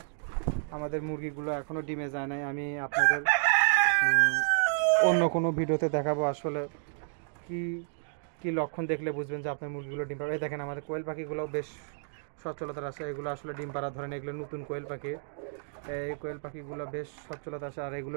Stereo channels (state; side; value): silent; left; digital silence